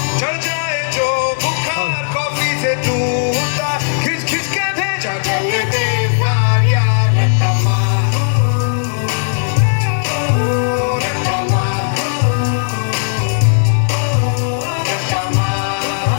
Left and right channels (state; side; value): silent; right; digital silence